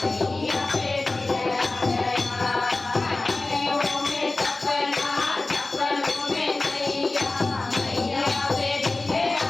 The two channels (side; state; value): right; quieter; 3.2 dB